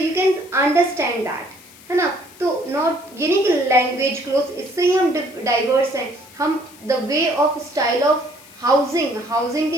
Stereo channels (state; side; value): noise; left; hiss, 22 dB below the sound